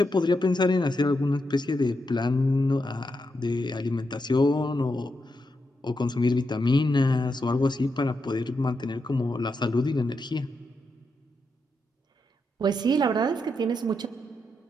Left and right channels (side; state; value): both; normal; correlation 0.84